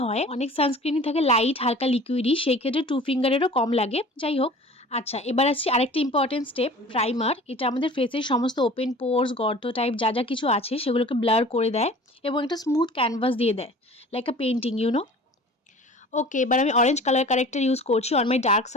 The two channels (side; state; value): both; normal; correlation 0.44